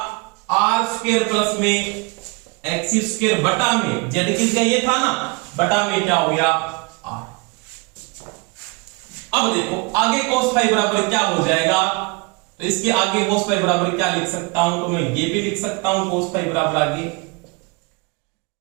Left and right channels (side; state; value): left; quieter; 29.2 dB